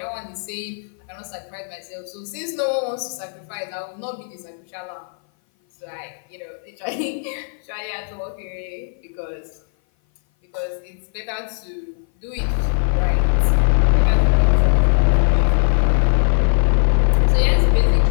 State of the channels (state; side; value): silent; right; 58 dB below the other